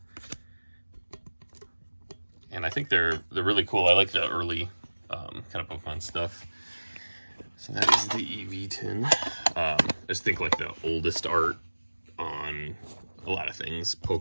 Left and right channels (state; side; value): inverted; both; correlation -1.00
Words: And I think they're really cool. I like the early kind of Pokemon stuff. So that is the EV tin. I just think like the oldest art on a lot of things,